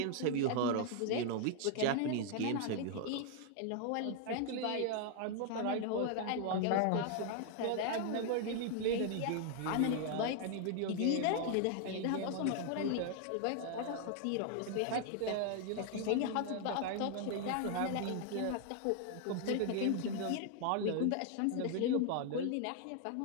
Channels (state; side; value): different; both; correlation 0.00